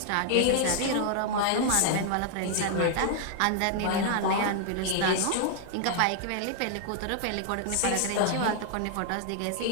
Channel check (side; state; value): both; different; correlation 0.00